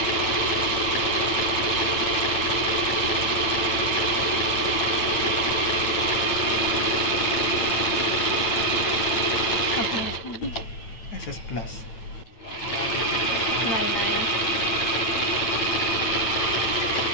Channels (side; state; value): right; late; 8.9 ms